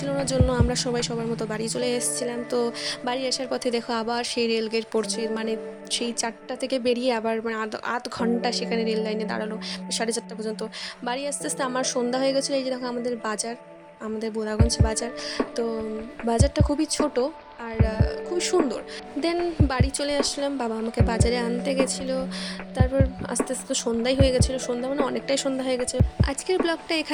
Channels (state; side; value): identical; both; correlation 1.00